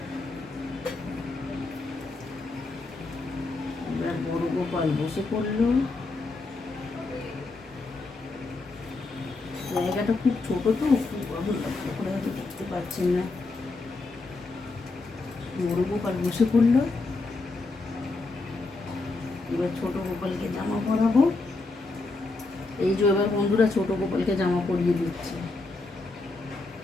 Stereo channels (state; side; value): quieter; right; 3.5 dB